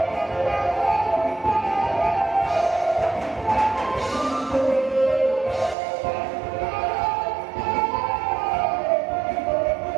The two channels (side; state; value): left; drops out; at 5.8 s